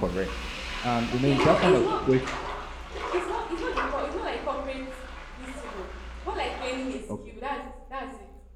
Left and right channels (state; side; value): identical; both; correlation 1.00